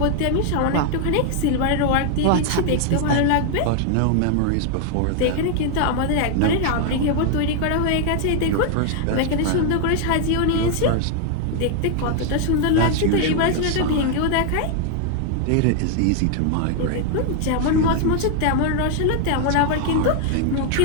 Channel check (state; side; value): different; both; correlation 0.00